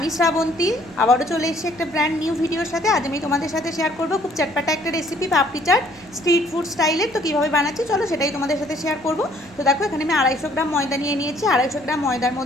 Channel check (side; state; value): left; noise; hum, 26 dB below the sound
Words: শ্রাবন্তী আবারও চলে এসেছি একটা ব্র্যান্ড নিউ ভিডিওর সাথে। আজ আমি তোমাদের সাথে শেয়ার করব খুব চটপাটা একটা রেসিপি, পাপড়ি চাট স্ট্রিট ফুড স্টাইলের। তো কীভাবে বানাচ্ছি চলো সেটাই তোমাদের সাথে শেয়ার করব। তো দেখো, এখানে আমি 250 গ্রাম ময়দা নিয়ে নিয়েছি। 250 গ্রাম ময়দার